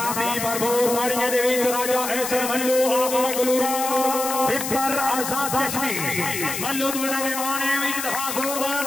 दी भरपूर ताड़ियां दे विच राजा ऐसर मल्लू आप मंगलूरा पिपर आजाद कश्मीर मल्लू दोड़ा मेहमान है एक दफा जोरदार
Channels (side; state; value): left; noise; hiss, 4 dB below the sound